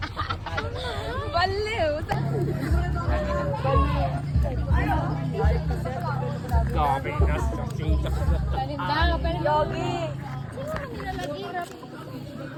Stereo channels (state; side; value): identical; both; correlation 1.00